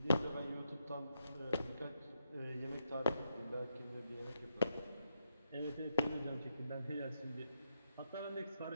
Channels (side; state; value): both; inverted; correlation -0.81